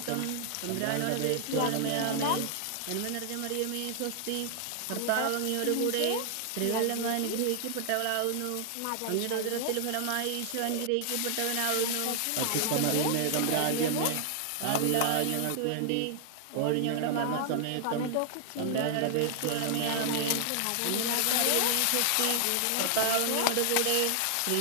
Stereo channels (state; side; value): different; both; correlation 0.00